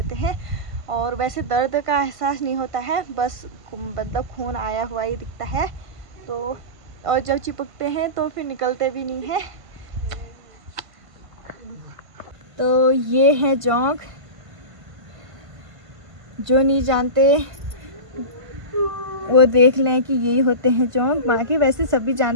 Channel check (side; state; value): left; late; 1.5 ms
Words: हैं। और वैसे दर्द का एहसास नहीं होता है, बस मतलब खून आया हुआ ही दिखता है। तो और जब चिपकते हैं तो फिर निकलते भी नहीं है। तो ये है जोंक, जो नहीं जानते वो देख लें कि यही होते हैं जोंक। बाकी वैसे सभी